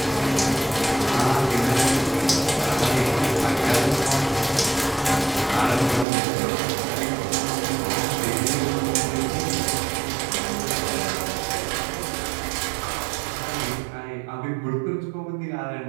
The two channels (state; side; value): drops out; left; at 6.1 s